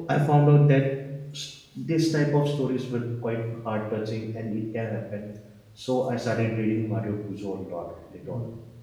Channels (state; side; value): identical; both; correlation 1.00